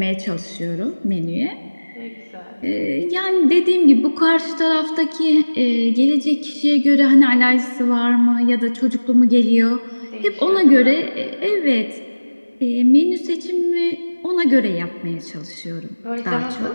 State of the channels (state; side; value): inverted; both; correlation -1.00